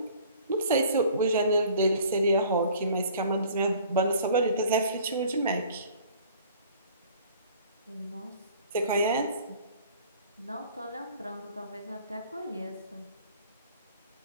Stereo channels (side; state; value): both; inverted; correlation -0.50